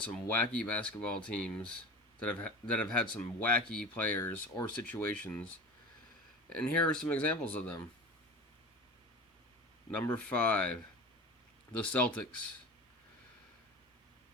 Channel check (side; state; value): both; normal; correlation 0.33